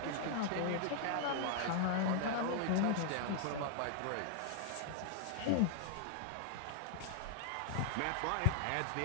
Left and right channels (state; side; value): different; both; correlation 0.00